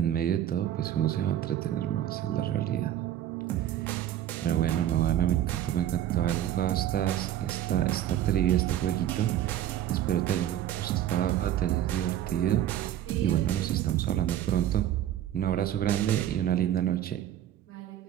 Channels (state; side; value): quieter; left; 11.6 dB